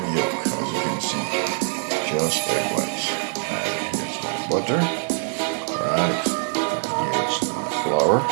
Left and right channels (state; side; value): silent; left; 63 dB below the other